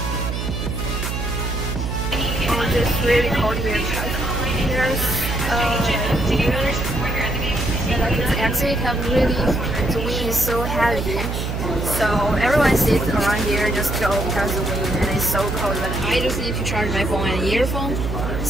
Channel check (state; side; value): noise; right; hum, 3 dB below the sound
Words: It's just really cold here because there's like this exit have really, the wind is so heavy, so everyone sits around here just go because of the wind and it's so cold, but I just need to charge my phone and earphone,